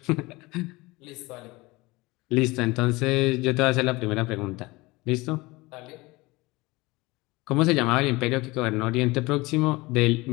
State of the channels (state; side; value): quieter; right; 22.3 dB